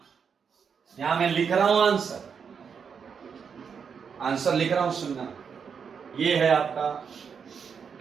यहां मैं लिख रहा हूं आंसर, आंसर लिख रहा हूं, सुनना, ये है आपका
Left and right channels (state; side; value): quieter; left; 6.5 dB